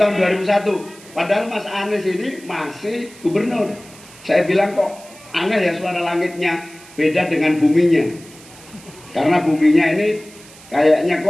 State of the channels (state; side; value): noise; right; hiss, 21 dB below the sound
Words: 2001. Padahal Mas Anies ini masih gubernur. Saya bilang kok aneh ya suara langitnya beda dengan buminya. Karena buminya ini kayaknya